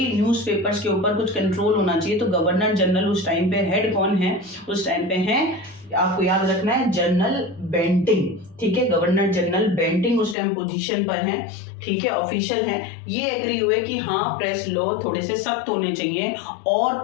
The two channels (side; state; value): right; drops out; at 10.4 s